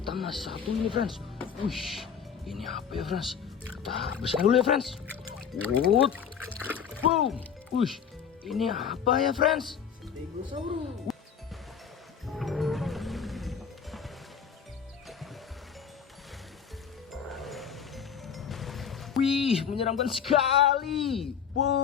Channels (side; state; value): right; quieter; 7.4 dB